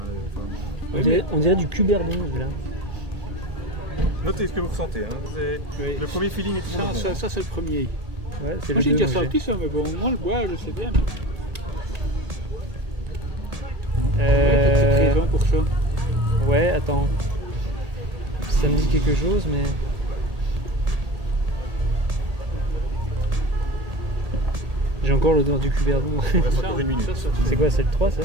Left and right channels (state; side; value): late; left; 1.8 ms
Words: Hein, On dirait du cuberdon là. Notez ce que vous ressentez. Hein. Oui. Le premier feeling est toujours le bon. Ça c'est le premier. Ouais, c'est Moi le j'ai déjà 2 sorti ça, mais bon, moi le boire, je sais bien. Euh... Présent pour ça. Ouais, attends. Ça me dit quelque chose, mais... J'ai encore l'odeur du cuberdon. Il reste encore 1 minute. C'est quoi, c'est le 3 ça?